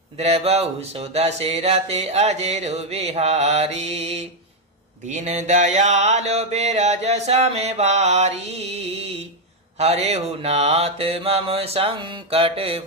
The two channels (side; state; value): both; normal; correlation 0.02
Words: द्रवहु सुदशरथ अजर बिहारी। दीन दयाल बिरज सम भारी, हरेहु नाथ मम संकट